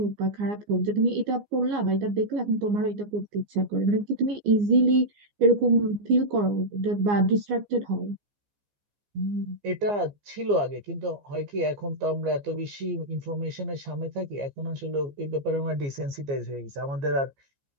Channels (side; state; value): left; late; 15 ms